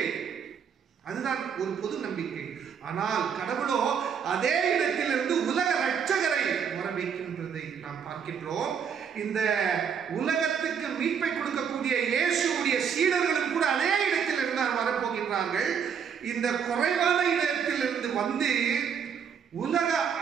அதுதான் ஒரு பொது நம்பிக்கை. ஆனால் கடவுளோ அதே இடத்திலிருந்து உலக ரட்சகரை வர வைக்கின்றதை நாம் பார்க்கின்றோம். இந்த உலகத்துக்கு மீட்பை கொடுக்கக்கூடிய இயேசுடைய சீடர்களும் கூட அதே இடத்தில் இருந்து வரப்போகின்றார்கள். இந்த குறைவான இடத்திலிருந்து வந்து உலக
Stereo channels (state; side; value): quieter; left; 7.3 dB